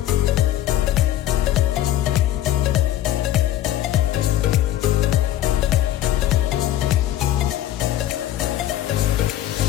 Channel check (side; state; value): right; quieter; 12.8 dB